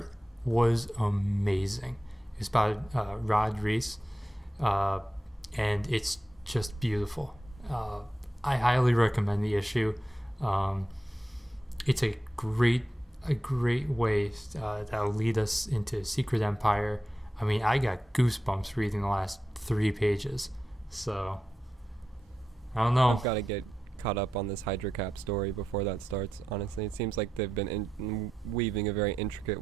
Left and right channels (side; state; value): both; normal; correlation 0.89